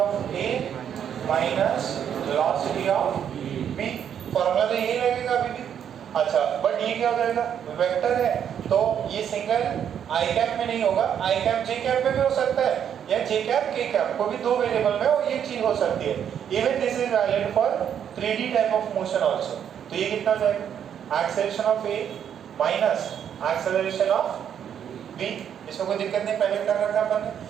A minus velocity of B. Formula तो यही लगेगा अभी भी। अच्छा बट ये क्या हो जाएगा? वेक्टर है तो ये सिंगल आई कैप में नहीं होगा, आई कैप जे कैप में भी हो सकता है या जे कैप के कैप को भी 2 वेरिएबल में और ये चीज हो सकती है। Even this is valid for 3D type of motion also. तो ये कितना हो जाएगा? Acceleration of A minus acceleration of B. इसमें कोई दिक्कत नहीं, पहले कर रखा अपन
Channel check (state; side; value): quieter; left; 8.8 dB